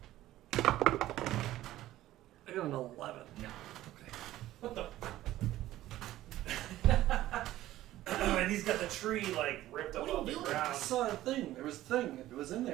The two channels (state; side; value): quieter; left; 14.8 dB